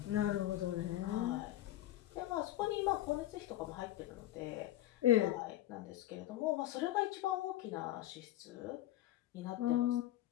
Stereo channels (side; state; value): right; quieter; 14.0 dB